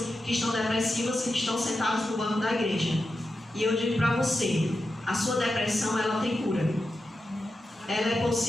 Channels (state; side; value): normal; both; correlation 0.90